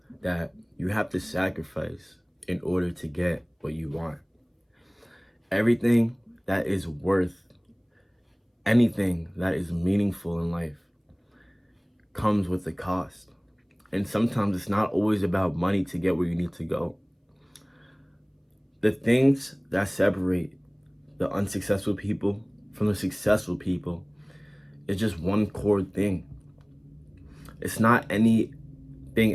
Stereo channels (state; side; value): identical; both; correlation 1.00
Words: that you have to sacrifice in order to get what you want. Everything that is worth anything that is meaningful in life comes with a cost. And sometimes it's not always about money to get where you need to go. The things that separate the unsuccessful people from the successful people is just one core thing. It's not anything